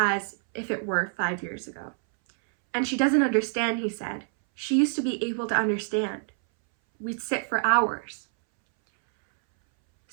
if it were 5 years ago. And she doesn't understand, he said. She used to be able to understand. We'd sit for hours.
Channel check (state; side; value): silent; left; 61 dB below the other